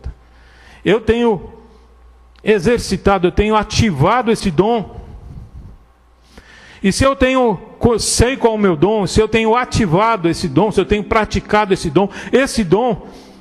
Eu tenho exercitado, eu tenho ativado esse dom? E se eu sei qual é o meu dom, se eu tenho ativado esse dom, se eu tenho praticado esse dom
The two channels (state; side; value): identical; both; correlation 1.00